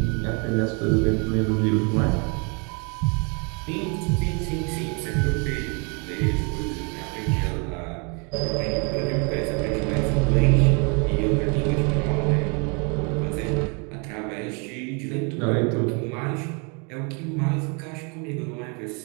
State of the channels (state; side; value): quieter; left; 34.3 dB